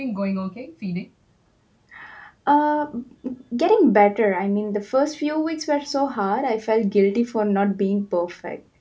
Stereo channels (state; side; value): identical; both; correlation 1.00